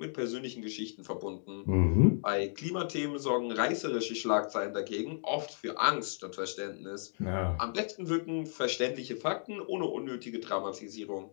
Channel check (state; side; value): silent; right; digital silence